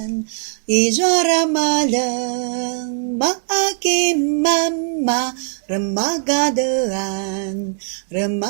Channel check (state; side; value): silent; left; digital silence